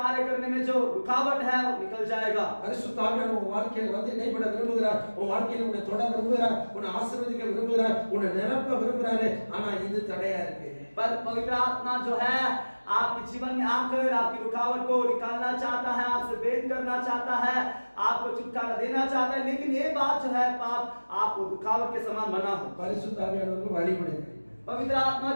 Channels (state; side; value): inverted; both; correlation -1.00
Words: करने में जो रुकावट है वो निकल जाएगा। பரிசுத்த ஆவியானவர் உங்க வாழ்க்கையில வந்து இடைப்பட விரும்புகிறார், உங்க வாழ்க்கையில உன்னை தொட விரும்புகிறார், உன்னை ஆசீர்வதிக்க விரும்புகிறார், உன்னை நிரப்ப விரும்புகிறாரு. ஆனா இது தடையா இருக்கு. पर पवित्र आत्मा जो है आपके जीवन में आकर आपकी रुकावट को निकालना चाहता है, आपसे भेद करना चाहता है, आपको छुटकारा देना चाहता है, लेकिन ये बात जो है पाप आपको रुकावट के समान बना है। பரிசுத்த ஆவியானவருக்கு வழிபடுங்க. पवित्र आत्मा